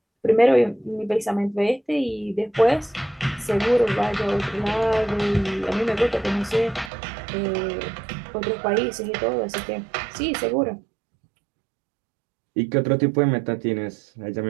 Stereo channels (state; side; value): drops out; left; at 6.9 s